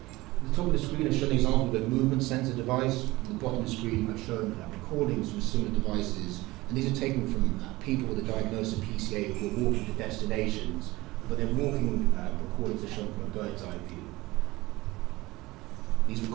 At the top of the screen I've shown an example of a movement sensor device. At the bottom of the screen I've shown recordings from similar devices, and these are taken from people with a diagnosis of PCA who are walking to destinations, but their walking recordings are shown from a bird's eye view. These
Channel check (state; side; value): quieter; left; 19.9 dB